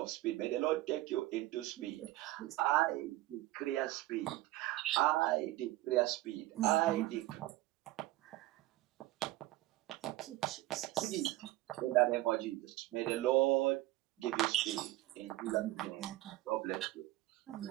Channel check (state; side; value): quieter; left; 17.3 dB